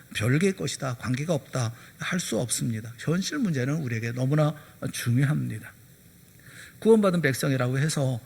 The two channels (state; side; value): identical; both; correlation 1.00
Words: 별개의 것이다, 관계가 없다 할 수 없습니다. 현실 문제는 우리에게 너무나 중요합니다. 구원받은 백성이라고 해서